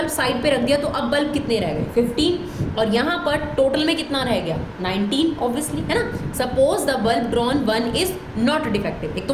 साइड पे रख दिया तो अब बल्ब कितने रह गए? 15, और यहाँ पर टोटल में कितना रह गया? 19 ऑब्वियसली, है ना। Suppose the bulb drawn 1 is not defective, एक तो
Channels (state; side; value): identical; both; correlation 1.00